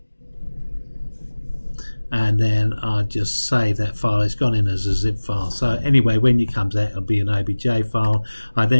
And then I'll just save that file. It's gone in as a zip file. So anyway, when it comes out, it'll be an OBJ file. I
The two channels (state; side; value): inverted; both; correlation -1.00